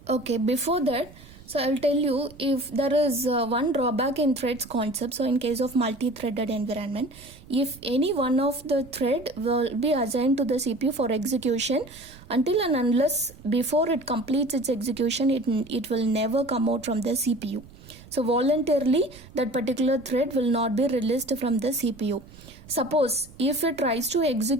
Okay, before that, so I'll tell you if there is one drawback in threads concept. So in case of multi-threaded environment, if any one of the thread will be assigned to the CPU for execution, until and unless before it completes its execution, it will never come out from the CPU. So voluntarily that particular thread will not be released from the CPU. Suppose if it tries to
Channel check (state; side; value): noise; right; rumble, 21 dB below the sound